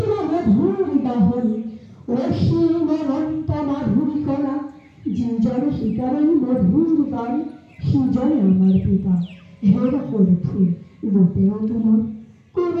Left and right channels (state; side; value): identical; both; correlation 1.00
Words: মধুৰ গাহৰি অসীম অনন্ত মাধুৰী কলা যিজনে শিকাৰে মধুৰ গান সিজনে আমাৰ পিতা। হেৰা সৰু ফুল গোটেও তোমাৰ